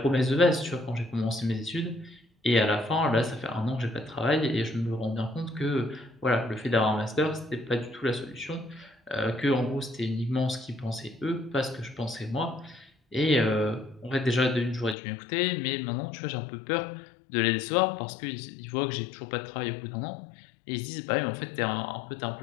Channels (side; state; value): right; drops out; at 15.0 s